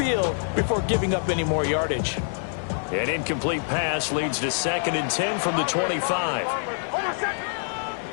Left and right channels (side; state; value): right; silent; 57 dB below the other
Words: before giving up any more yardage. An incomplete pass leads to 2nd and 10 from the 25.